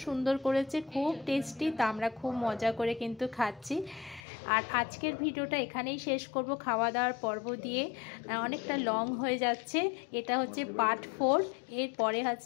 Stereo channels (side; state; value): right; drops out; at 4.2 s